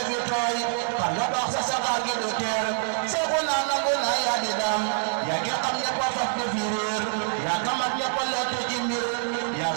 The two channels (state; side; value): silent; left; 61 dB below the other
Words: fi tooy xam nga baax sa saxaar gi du teer seexu naa nangu naa yaa di daam yaa ngi xam ñëpp a faf di fi réer yaa kamat ñëpp a lottu ci mbir yaa